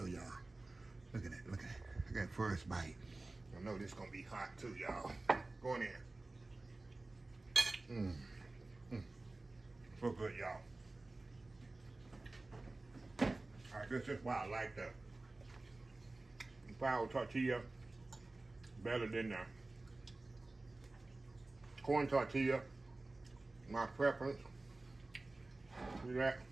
y'all. Look at that, look at that. Look at that first bite. I know this gonna be hot too, y'all. Go in there. So good, y'all. All right, this is why I like the flour tortilla better than the corn tortilla. My preference. See that?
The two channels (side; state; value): left; quieter; 3.1 dB